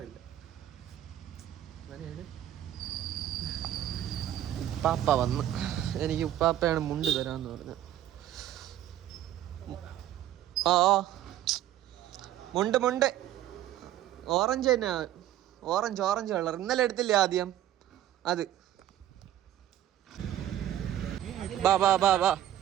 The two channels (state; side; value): quieter; left; 12.4 dB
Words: ഉപ്പാപ്പ വന്ന്, എനിക്ക് ഉപ്പാപ്പയാണ് മുണ്ട് തരാന്ന് പറഞ്ഞു. മുണ്ട് ഓറഞ്ച് തന്നെ, ഓറഞ്ച് കളർ. ഇന്നലെ എടുത്തില്ലേ ആദ്യം അത്. ബാ